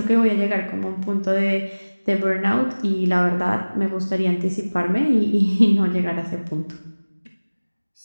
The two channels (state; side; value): inverted; both; correlation -1.00